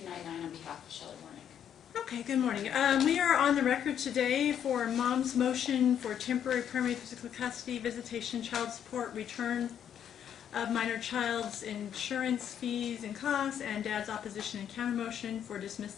on behalf of Shelley Warneck. Okay, good morning. We are on the record today for Mom's motion for temporary permanent physical custody, visitation, child support, return of minor child's insurance fees and costs, and Dad's opposition and countermotion for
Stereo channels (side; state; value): right; quieter; 9.2 dB